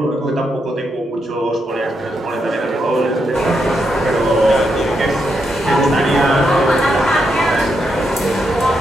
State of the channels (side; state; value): both; normal; correlation 0.82